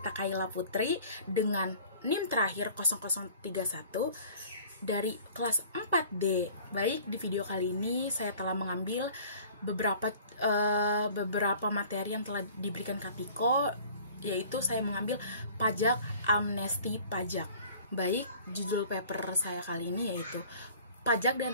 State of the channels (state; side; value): inverted; both; correlation -0.49